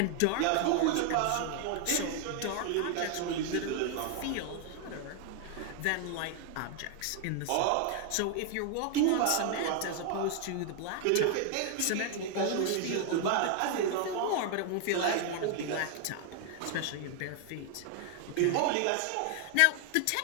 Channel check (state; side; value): different; both; correlation 0.00